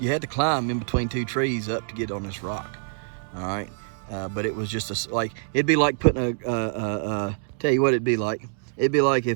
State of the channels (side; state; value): left; silent; digital silence